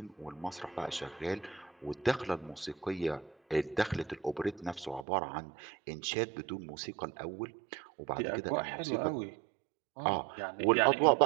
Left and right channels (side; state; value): left; drops out; at 5.1 s